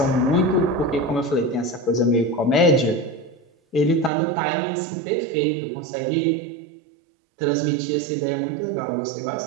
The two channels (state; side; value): drops out; left; at 4.1 s